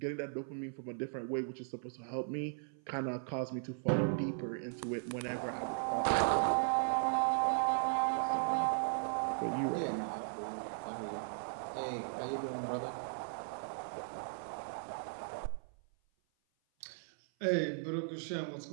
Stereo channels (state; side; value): silent; left; 53 dB below the other